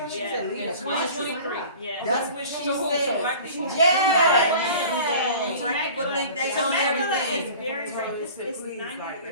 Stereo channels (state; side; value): inverted; both; correlation -0.43